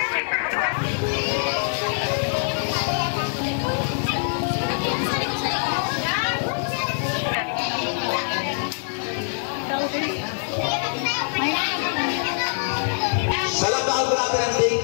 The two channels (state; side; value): silent; right; digital silence